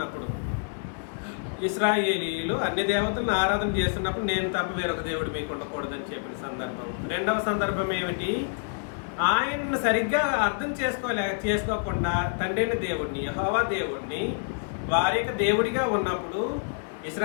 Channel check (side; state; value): right; silent; digital silence